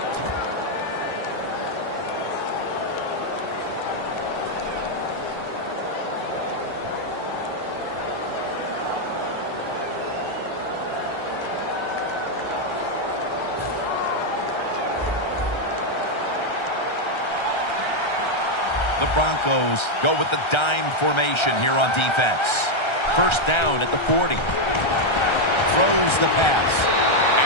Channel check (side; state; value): right; late; 1.3 ms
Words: The Broncos go with the dime formation here on defense. First down at the 40. Throws the pass.